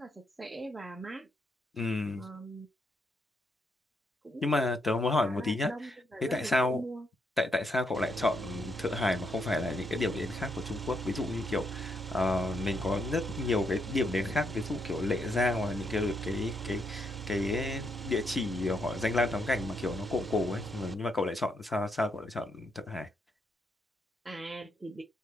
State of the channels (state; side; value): normal; both; correlation 0.77